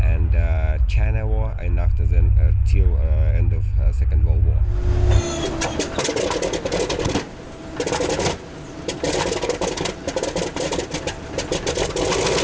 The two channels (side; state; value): both; identical; correlation 1.00